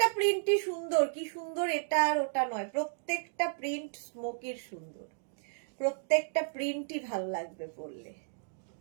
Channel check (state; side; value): silent; left; digital silence